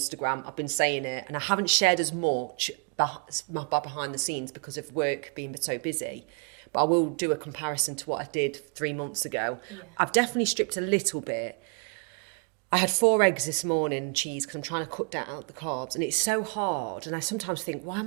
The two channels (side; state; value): left; quieter; 36.0 dB